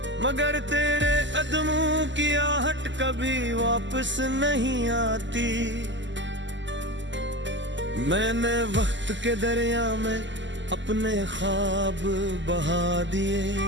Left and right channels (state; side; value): late; left; 0.54 ms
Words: मगर तेरे कदमों की आहट कभी वापस नहीं आती। मैंने वक्त के दरिया में अपने ख्वाब बहा दिए,